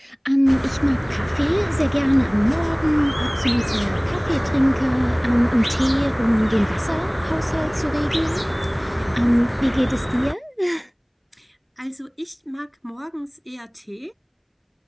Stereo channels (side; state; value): both; identical; correlation 1.00